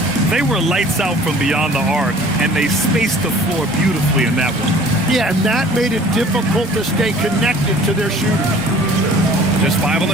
They were lights out from beyond the arc, and they spaced the floor beautifully in that one. Yeah, and that made it difficult to stay connected to their shooters. Just 5 on the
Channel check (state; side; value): normal; both; correlation 0.50